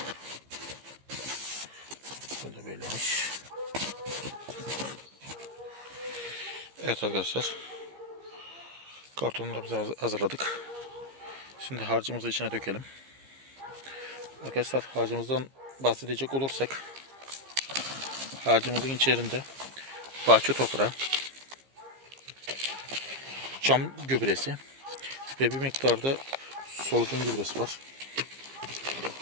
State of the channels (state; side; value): late; left; 15 ms